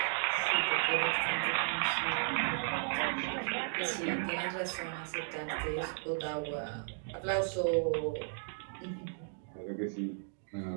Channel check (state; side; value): silent; left; digital silence